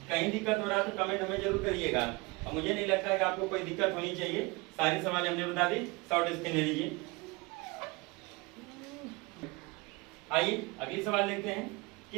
कहीं दिक्कत हो रहा है तो कमेंट हमें जरूर करिएगा, और मुझे नहीं लगता है कि आपको कोई दिक्कत होनी चाहिए। सारी सवाल हमने बता दी, शॉर्ट स्क्रीन ले लीजिए। आइए अगली सवाल देखते हैं।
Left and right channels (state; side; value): quieter; left; 25.3 dB